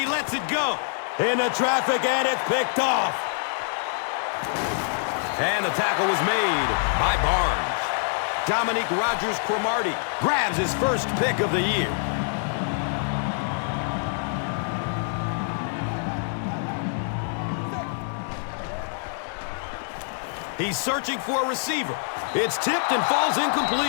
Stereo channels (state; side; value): silent; right; 61 dB below the other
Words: lets it go. Into traffic, and it's picked off. And the tackle was made by Barnes. Dominique Rodgers-Cromartie grabs his first pick of the year. He's searching for a receiver. It's tipped and falls